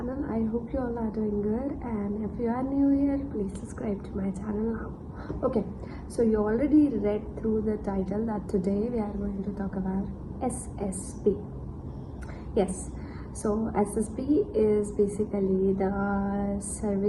I hope you all are doing good, and if you are new here, please subscribe to my channel now. Okay, so you already read through the title that today we are going to talk about SSB. Yes, so SSB is basically the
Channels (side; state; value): both; identical; correlation 1.00